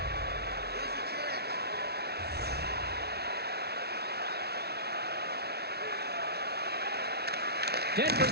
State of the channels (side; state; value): left; late; 0.47 ms